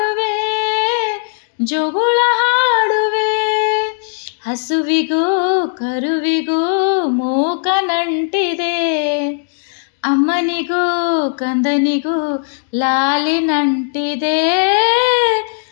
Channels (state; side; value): silent; right; digital silence